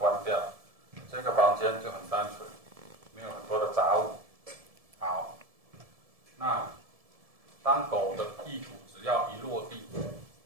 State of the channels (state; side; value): late; left; 1.7 ms